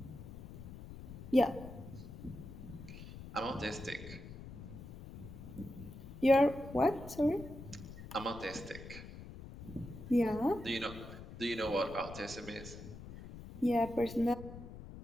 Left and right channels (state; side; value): noise; left; rumble, 13 dB below the sound